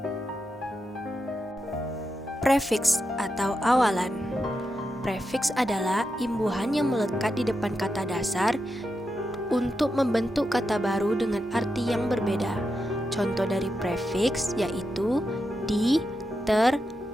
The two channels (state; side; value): normal; both; correlation 0.86